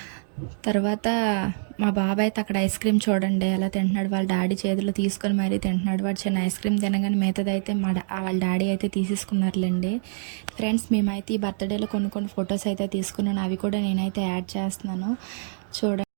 తర్వాత మా బాబాయ్ అయితే అక్కడ ఐస్ క్రీమ్ చూడండి ఎలా తింటున్నాడు. వాళ్ళ డాడీ చేతిలో తీసుకొని మరీ తింటున్నాడు. వాడు చిన్న ఐస్ క్రీమ్ తినగానే మిగతాది అయితే వాళ్ళ డాడీ అయితే తీసేసుకున్నారులేండి. ఫ్రెండ్స్ మేమైతే ఈ బర్త్డేలో కొన్ని ఫొటోస్ అయితే తీసుకున్నాను. అవి కూడా నేనైతే యాడ్ చేస్తున్నాను చూడండి.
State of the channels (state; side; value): silent; left; digital silence